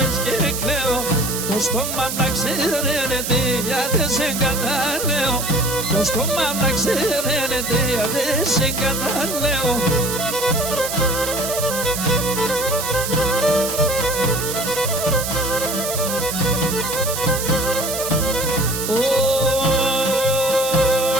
και κλαίω. Το στόμα να ξέρετε γιατί σε καταλέω. Το στόμα να ξέρετε γιατί σε καταλέω.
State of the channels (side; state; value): right; noise; hiss, 4 dB below the sound